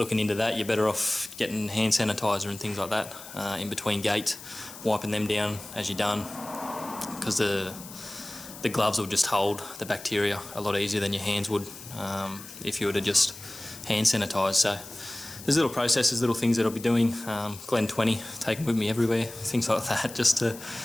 into that, you're better off getting hand sanitizer and things like that in between gates, wiping them down as you're done, because the gloves will just hold the bacteria a lot easier than your hands would if you were to just hand sanitize. So there's little processes, little things that I'll be doing. Glen 20, taking with me everywhere, things like that, just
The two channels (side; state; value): left; noise; hiss, 15 dB below the sound